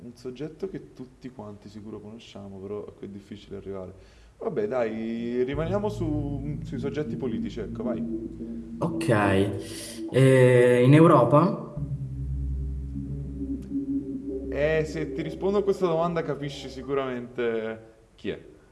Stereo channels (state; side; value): identical; both; correlation 1.00